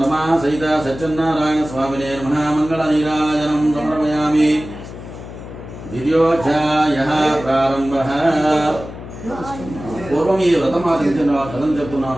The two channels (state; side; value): noise; left; hum, 13 dB below the sound